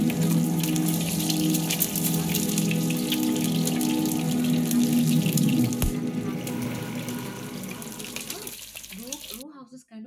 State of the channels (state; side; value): identical; both; correlation 1.00